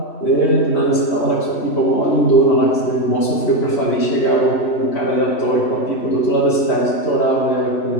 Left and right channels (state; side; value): late; right; 3.1 ms